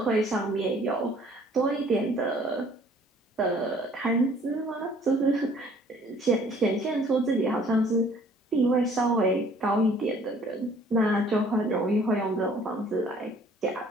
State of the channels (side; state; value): both; normal; correlation 0.56